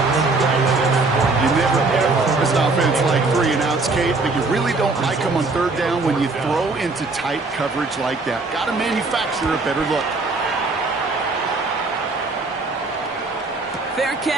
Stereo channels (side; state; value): left; quieter; 3.6 dB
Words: You never ever this offense like 3 and outs, Kate, but you really don't like them on 3rd down when you throw into tight coverage like that. Got to manufacture a better look. Fair